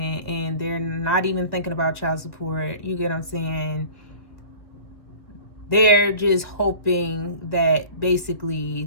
and they're not even thinking about child support. You get what I'm saying? They're just hoping that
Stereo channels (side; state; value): right; late; 2.0 ms